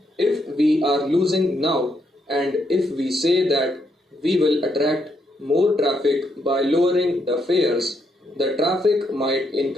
If we are losing now, and if we say that we will attract more traffic by lowering the fares, the traffic might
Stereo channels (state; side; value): normal; both; correlation 0.77